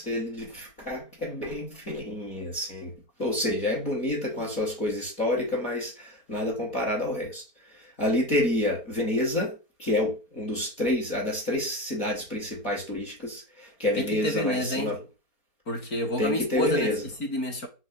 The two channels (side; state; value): right; late; 4.3 ms